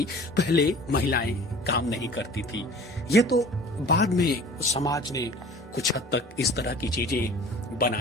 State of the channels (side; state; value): both; normal; correlation 0.45